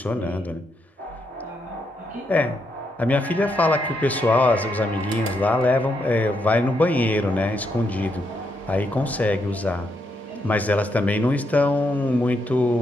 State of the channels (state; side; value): normal; both; correlation 0.79